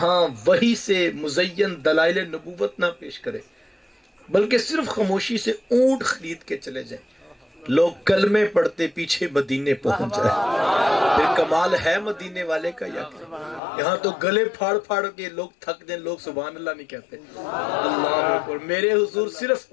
وہی سے مزین دلائل نبوت نہ پیش کرے بلکہ صرف خاموشی سے اونٹ خرید کے چلے جائیں لوگ کلمے پڑھتے پیچھے مدینے پہنچ جائیں پھر کمال ہے مدینے والے کا یا یہاں تو گلے پھاڑ پھاڑ کے لوگ تھک جائیں لوگ سبحان اللہ نہیں کہتے اللہ اکبر میرے حضور صرف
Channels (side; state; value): right; drops out; at 13.6 s